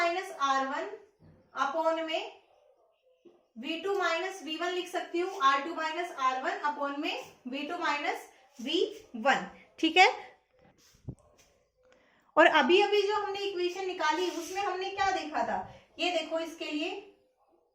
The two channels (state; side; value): identical; both; correlation 1.00